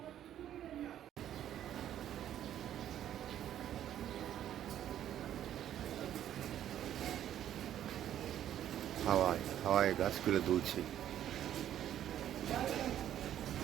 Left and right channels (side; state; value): left; quieter; 11.1 dB